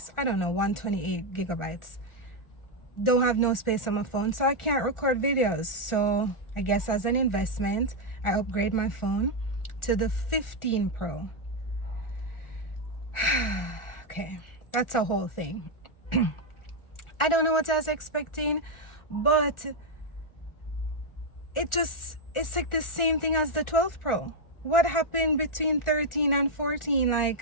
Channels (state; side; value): late; right; 1.4 ms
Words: I don't know, 128 gigabytes. Don't have no space on my phone, so I can't record videos. So I guess as an investment, I upgrade my phone to the 15 Pro. Okay, that's a whole thing. I don't know what I was expecting, but it's like the same thing as the 12 Pro. What happened between 13 and 14?